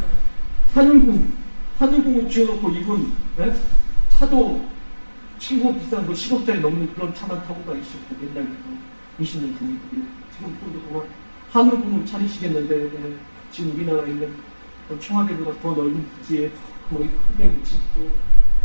하늘궁을 지어놓고 이분, 네? 차도 친구 비싼 거 10억짜리 넘는 그런 차만 타고 다니시고 옛날부터 20년 전에 지금 또 하늘궁을 차리시겠는데 네? 지금 우리나라에 있는 청와대보다 더 넓은 부지에 거의 크게 묻히고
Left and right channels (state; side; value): inverted; both; correlation -1.00